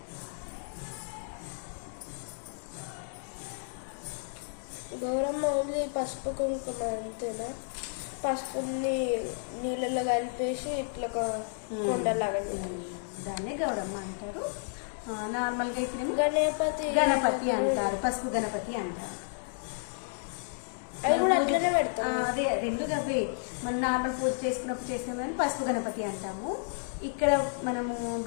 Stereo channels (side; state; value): right; silent; digital silence